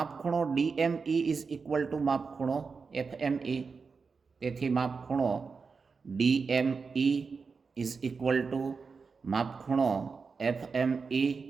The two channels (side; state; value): left; quieter; 5.0 dB